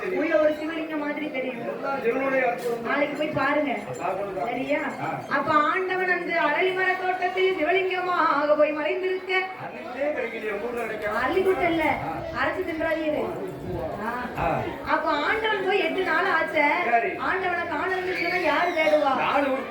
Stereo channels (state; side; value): identical; both; correlation 1.00